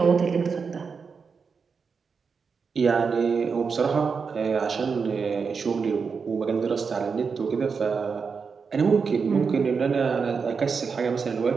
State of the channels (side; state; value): left; quieter; 5.5 dB